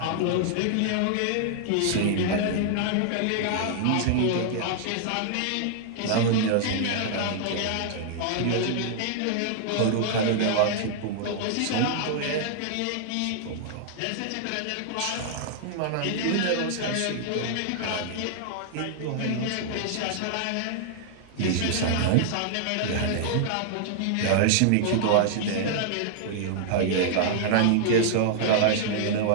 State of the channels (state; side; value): different; both; correlation -0.01